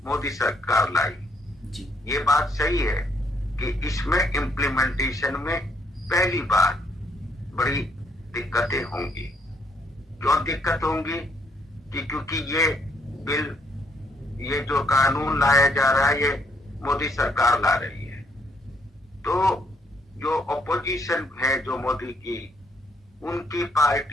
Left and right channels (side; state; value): both; normal; correlation 0.71